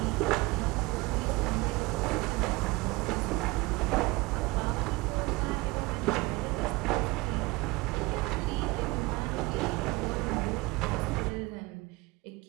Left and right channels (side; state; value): left; quieter; 22.9 dB